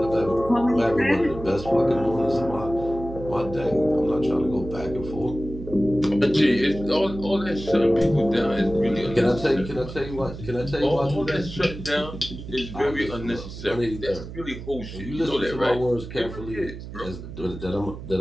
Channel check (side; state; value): right; noise; hum, 11 dB below the sound